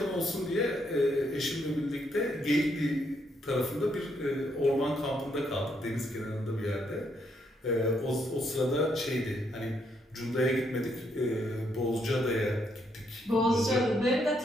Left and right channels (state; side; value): normal; both; correlation 0.74